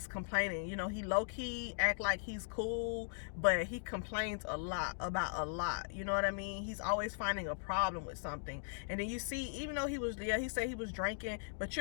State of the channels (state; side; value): silent; right; digital silence